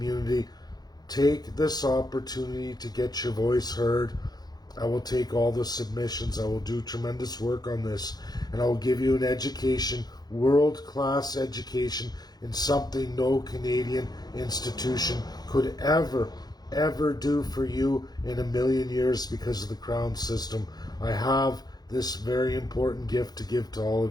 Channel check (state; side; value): late; right; 0.19 ms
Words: take this opportunity to get your voice heard. I will take all the submissions. I will do tremendous work on this, and I will give you an education, world-class education, in something no Canadian institution could ever do for you in a million years because of the Crown system. I have this very important gift to give to all